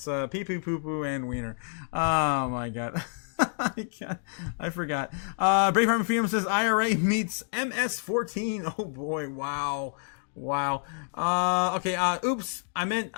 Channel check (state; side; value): silent; right; digital silence